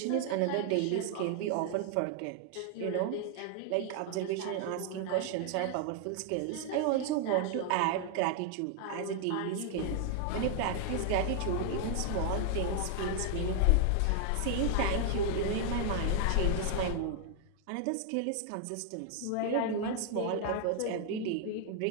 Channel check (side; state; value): both; different; correlation 0.00